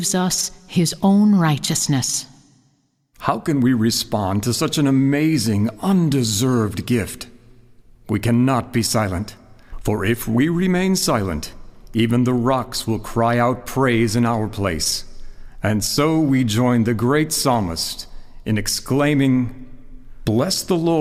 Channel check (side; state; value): both; identical; correlation 1.00